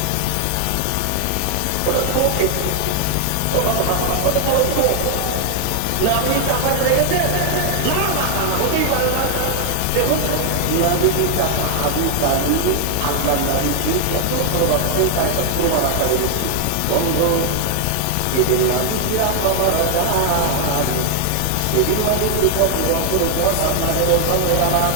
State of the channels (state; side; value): different; both; correlation 0.00